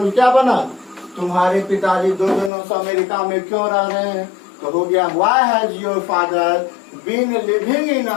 क्या बना? तुम्हारे पिताजी 2 दिनों से अमेरिका में क्यों रह रहे हैं? तो हो गया why has your father been living in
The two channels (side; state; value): right; drops out; at 2.5 s